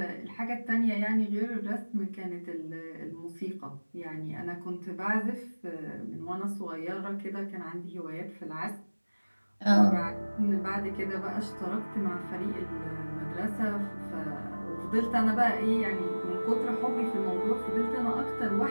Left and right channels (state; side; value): inverted; both; correlation -1.00